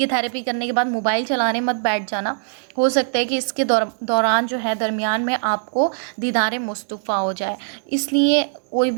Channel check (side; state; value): left; silent; digital silence